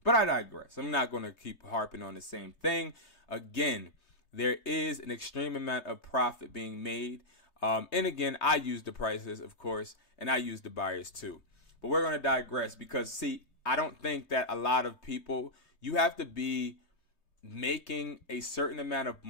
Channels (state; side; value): late; right; 3.3 ms